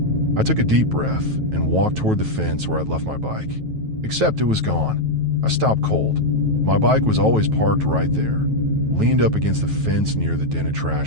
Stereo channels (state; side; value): late; left; 9.2 ms